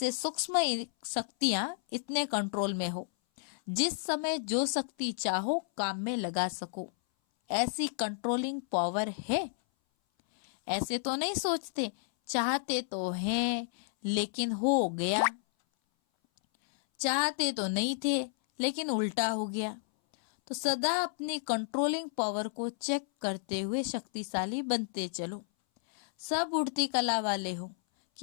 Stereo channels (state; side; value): silent; right; 57 dB below the other